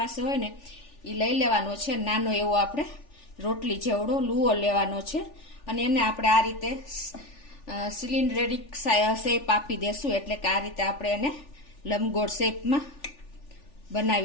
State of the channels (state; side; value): late; right; 3.4 ms